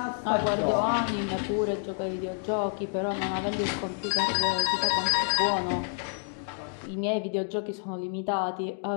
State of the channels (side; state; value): right; silent; 55 dB below the other